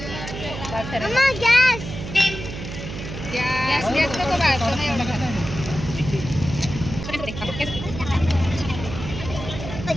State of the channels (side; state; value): right; noise; hum, 8 dB below the sound